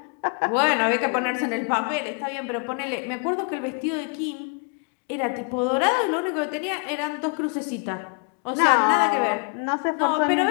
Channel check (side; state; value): right; quieter; 38.9 dB